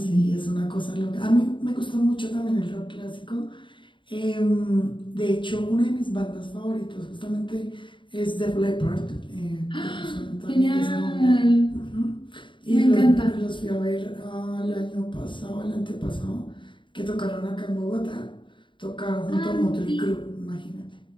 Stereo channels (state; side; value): late; right; 0.24 ms